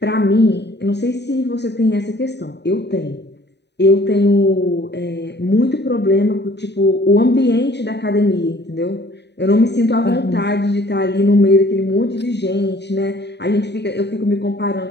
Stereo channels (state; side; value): late; right; 0.50 ms